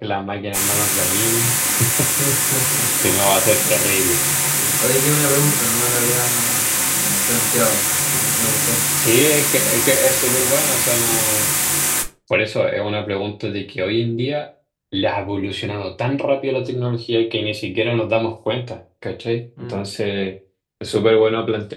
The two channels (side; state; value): both; identical; correlation 1.00